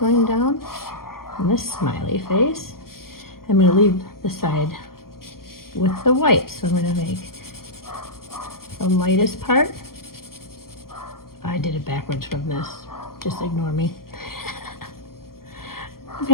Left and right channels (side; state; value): right; late; 0.92 ms